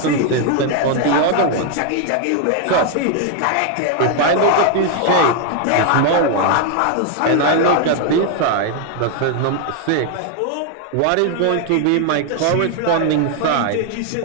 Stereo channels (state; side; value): different; both; correlation 0.00